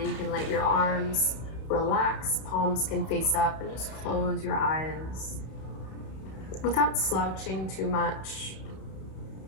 You can let your arms relax. Palms can face up and just close your eyes. Without slouching too much.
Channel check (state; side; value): late; right; 31 ms